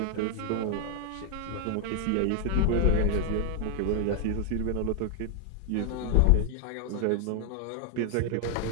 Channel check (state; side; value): different; both; correlation 0.00